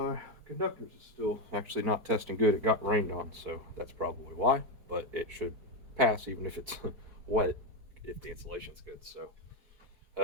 conductors is still actually not testing good. It got rained on, so that's probably why, but it should pass even if it's wet if the insulation's good. So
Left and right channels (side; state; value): left; late; 4.7 ms